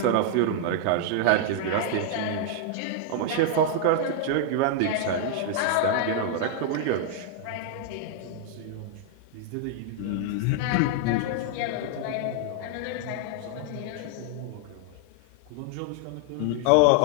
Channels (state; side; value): different; both; correlation -0.01